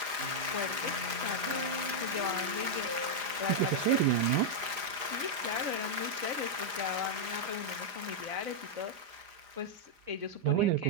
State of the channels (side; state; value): left; late; 4.9 ms